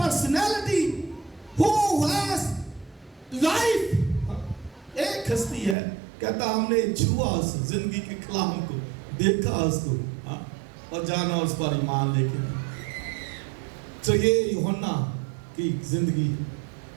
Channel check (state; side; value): drops out; left; at 5.8 s